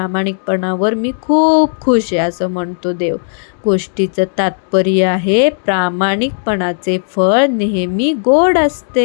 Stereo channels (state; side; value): silent; right; digital silence